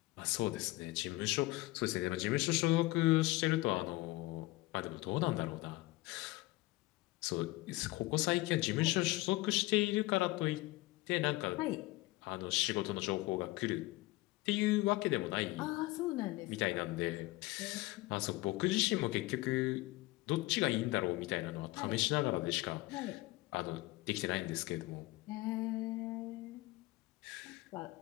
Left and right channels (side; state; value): right; quieter; 20.3 dB